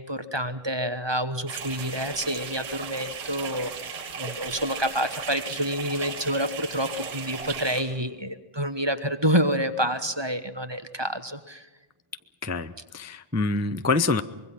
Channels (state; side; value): late; left; 1.2 ms